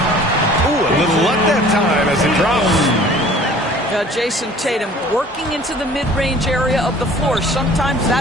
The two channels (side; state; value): both; normal; correlation 0.49